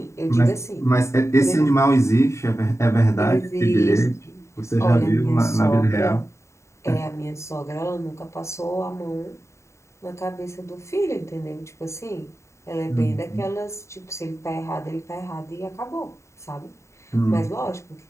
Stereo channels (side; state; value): right; late; 0.14 ms